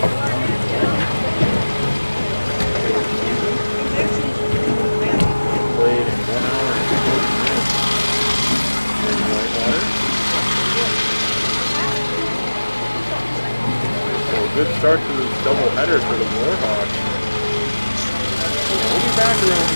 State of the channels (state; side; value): inverted; both; correlation -1.00